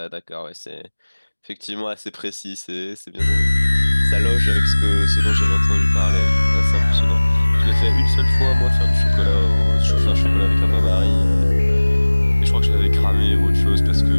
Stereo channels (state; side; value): inverted; both; correlation -1.00